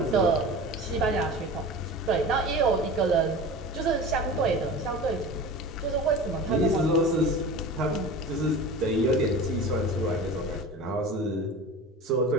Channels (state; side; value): normal; both; correlation 0.34